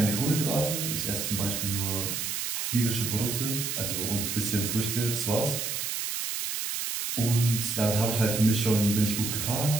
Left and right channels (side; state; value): right; noise; hiss, 2 dB below the sound